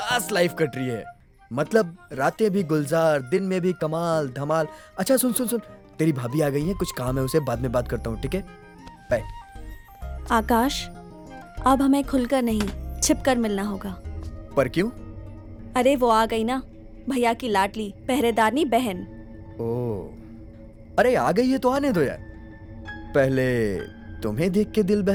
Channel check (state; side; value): identical; both; correlation 1.00